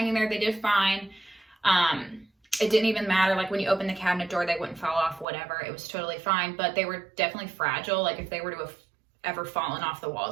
there. They did fine. It didn't even matter, like when you open the cabinet door, they wouldn't fall off, whatever. It was totally fine, but they were definitely fragile. Like if they were to have ever fallen off the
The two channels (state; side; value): drops out; left; at 5.2 s